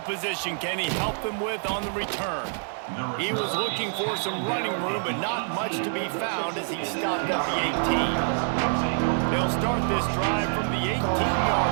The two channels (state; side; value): silent; left; digital silence